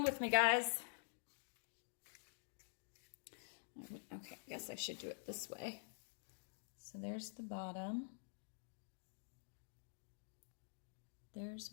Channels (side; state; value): right; silent; digital silence